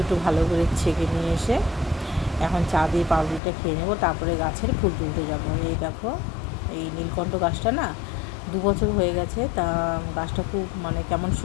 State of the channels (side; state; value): right; drops out; at 3.4 s